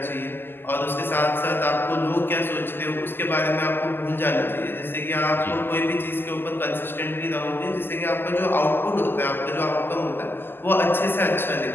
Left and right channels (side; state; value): right; late; 0.099 ms